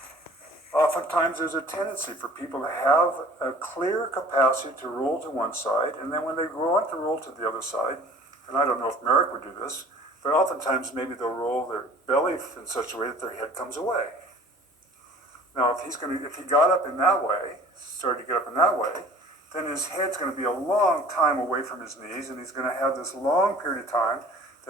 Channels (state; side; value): normal; both; correlation 0.48